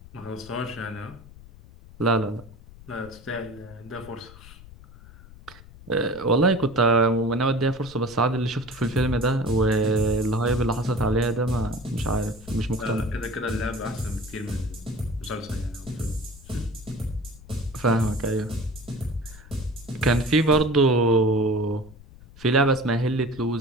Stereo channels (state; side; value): noise; left; rumble, 20 dB below the sound